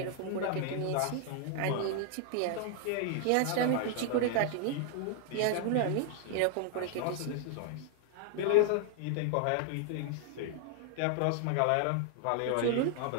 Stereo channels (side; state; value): both; different; correlation 0.00